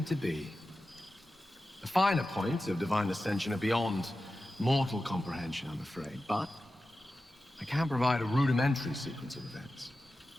to be. The finer points of divine ascension are beyond mortal comprehension, I'm afraid, but I can provide a rudimentary sequence of events.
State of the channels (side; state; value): both; normal; correlation 0.93